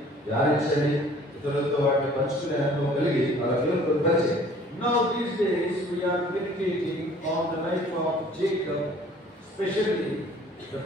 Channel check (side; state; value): both; normal; correlation 0.53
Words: ధ్యానించండి, ఇతరులతో వాటిని పంచుకునే అనుభవం కలిగి అలా దేవుని కొరకు పనిచేయండి. Now these days we are meditating on the life of Jacob, especially the